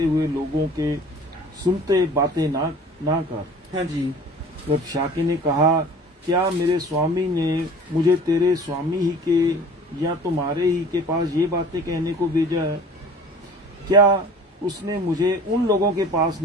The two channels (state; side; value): normal; both; correlation 0.45